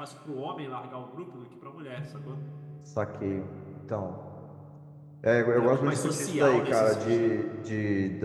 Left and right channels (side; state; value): both; identical; correlation 1.00